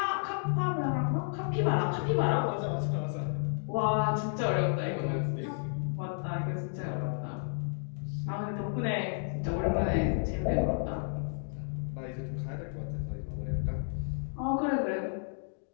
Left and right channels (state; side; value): silent; right; digital silence